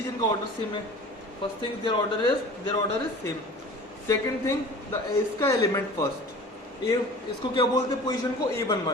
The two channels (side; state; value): both; normal; correlation 0.42